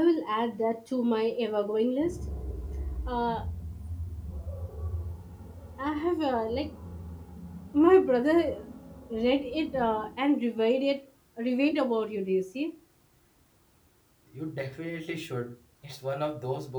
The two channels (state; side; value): identical; both; correlation 1.00